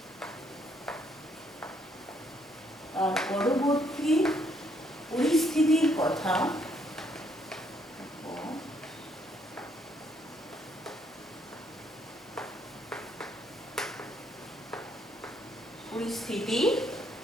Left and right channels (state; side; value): normal; both; correlation 0.70